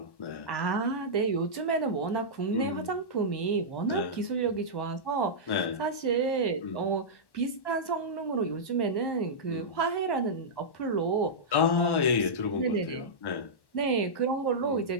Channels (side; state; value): right; late; 1.1 ms